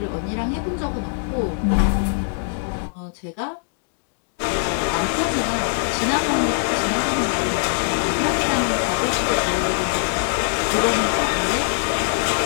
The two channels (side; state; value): right; silent; digital silence